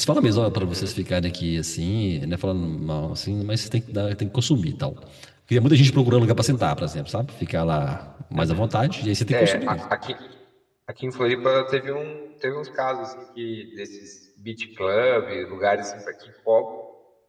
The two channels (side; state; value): both; identical; correlation 1.00